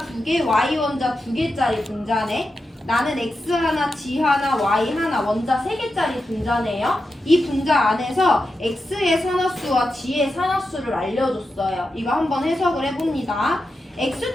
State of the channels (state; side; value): normal; both; correlation 0.89